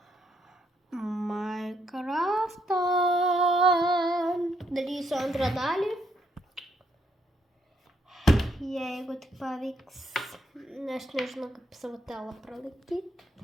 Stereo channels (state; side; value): normal; both; correlation 0.74